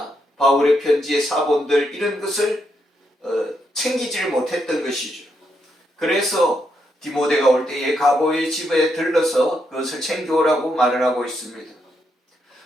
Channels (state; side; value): normal; both; correlation 0.80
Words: 바울의 편지의 사본들 이런 것을 챙기지를 못했던 것이죠. 그래서 디모데가 올 때에 가보의 집에 들러서 그것을 챙겨오라고 말을 하고 있습니다.